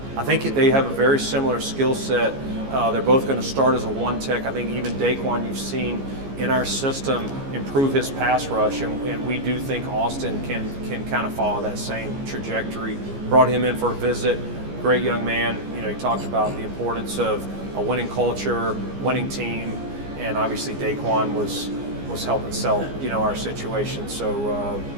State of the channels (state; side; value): late; left; 15 ms